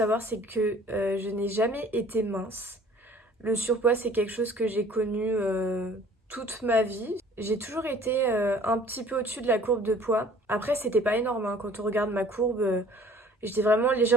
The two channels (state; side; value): normal; both; correlation 0.52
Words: c'est que je n'ai jamais été mince. Le surpoids, c'est quelque chose que j'ai connu toute ma vie. J'ai toujours été un petit peu au-dessus de la courbe de poids. Après, c'était pas énorme, hein. Quand on regarde ma courbe, j'étais vraiment